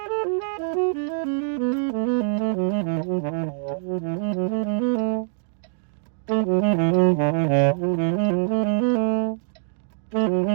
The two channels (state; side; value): silent; left; digital silence